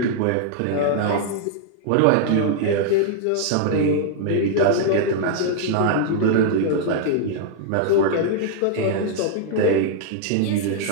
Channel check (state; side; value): different; both; correlation -0.01